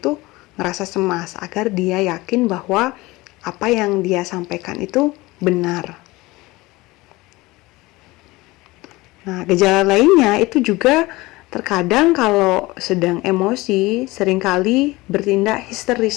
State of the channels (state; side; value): quieter; right; 20.9 dB